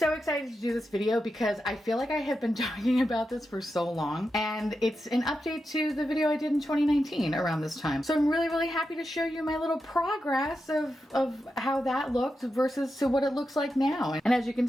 excited to do this video because I feel like I have been talking about this for so long, and it's an update to the video I did in 2019 around this time. So I'm really, really happy to show you my little progress of how that looked versus to what it looks like now. And as you can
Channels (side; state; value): both; normal; correlation 0.88